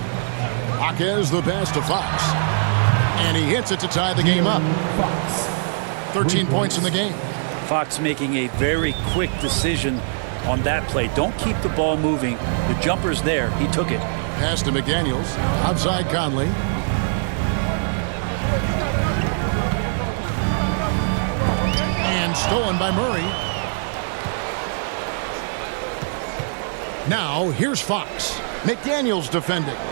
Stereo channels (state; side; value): silent; left; digital silence